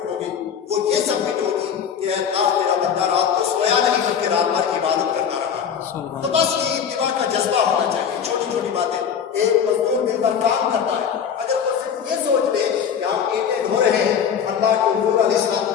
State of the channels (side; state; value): right; quieter; 7.7 dB